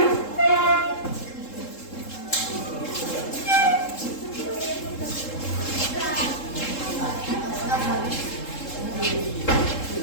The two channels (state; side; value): late; right; 3.7 ms